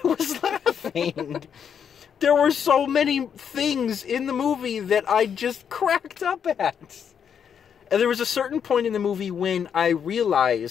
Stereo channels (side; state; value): right; quieter; 7.7 dB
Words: was laughing. There were so many things in the movie that I just cracked up at. And there was a certain point in the movie when I